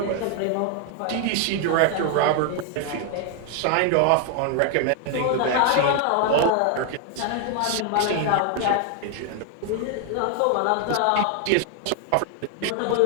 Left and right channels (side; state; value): both; different; correlation 0.00